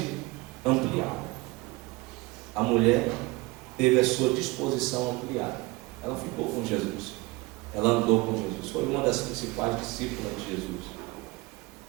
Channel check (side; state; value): left; quieter; 23.0 dB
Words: ampliada. A mulher teve a sua disposição ampliada. Ela ficou com Jesus. Ela andou com Jesus. Foi uma das principais discípulas de Jesus.